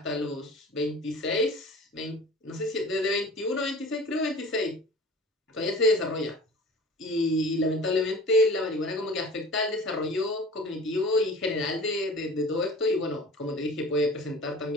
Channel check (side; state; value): both; normal; correlation 0.42